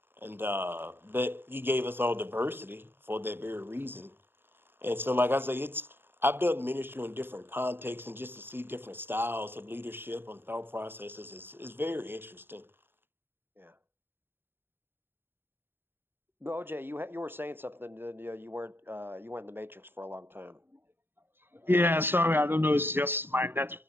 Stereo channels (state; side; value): late; left; 0.10 ms